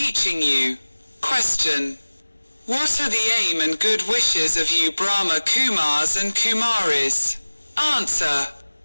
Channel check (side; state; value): both; inverted; correlation -1.00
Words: you. Question. What are the aim and good wishes of you Brahma Kumars and Kumaris? Answer.